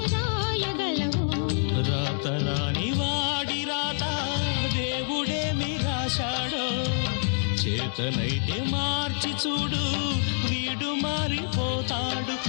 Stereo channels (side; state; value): right; silent; digital silence